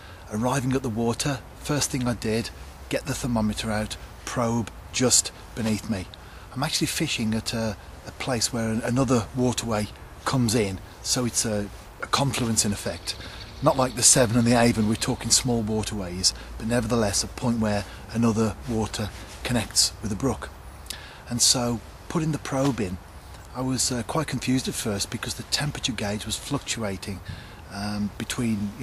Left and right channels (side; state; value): both; identical; correlation 1.00